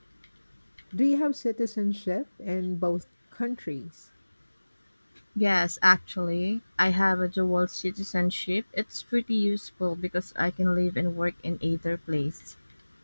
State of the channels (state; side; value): inverted; both; correlation -1.00